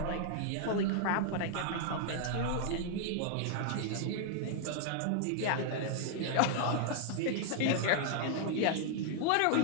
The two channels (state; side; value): different; both; correlation 0.00